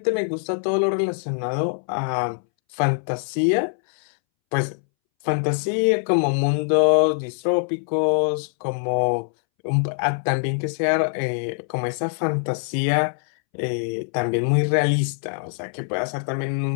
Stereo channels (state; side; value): silent; right; 63 dB below the other